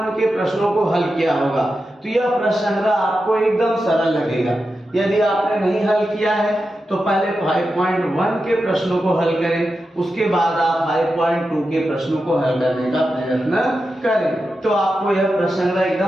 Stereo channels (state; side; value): normal; both; correlation 0.90